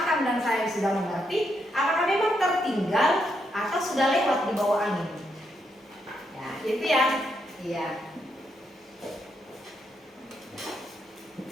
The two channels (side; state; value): both; normal; correlation 0.79